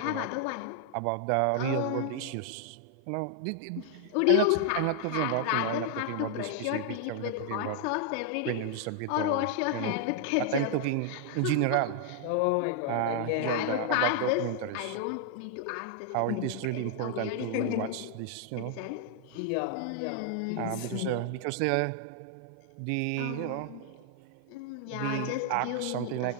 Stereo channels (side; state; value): both; different; correlation 0.00